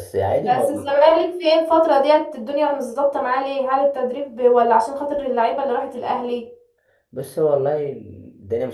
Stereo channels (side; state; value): both; identical; correlation 1.00